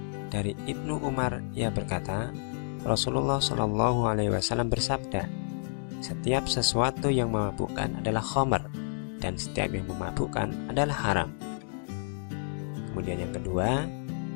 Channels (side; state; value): right; silent; digital silence